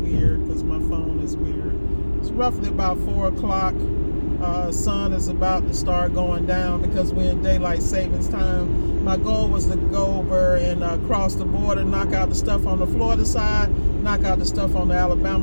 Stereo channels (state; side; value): inverted; both; correlation -1.00